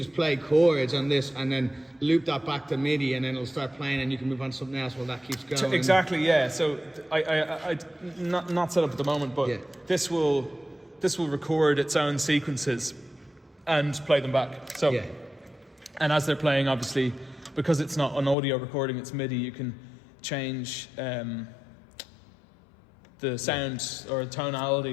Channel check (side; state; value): right; drops out; at 18.4 s